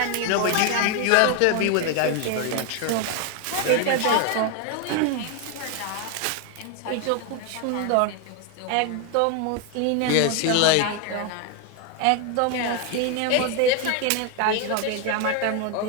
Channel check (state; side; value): different; both; correlation 0.01